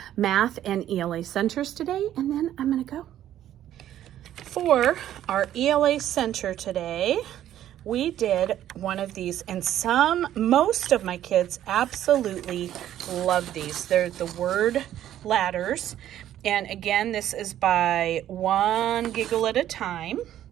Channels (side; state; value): left; quieter; 11.9 dB